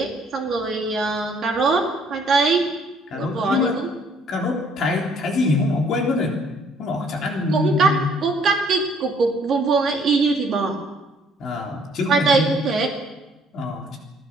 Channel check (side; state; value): both; normal; correlation 0.61